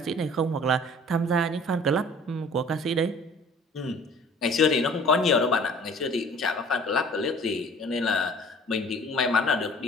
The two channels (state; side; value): normal; both; correlation 0.49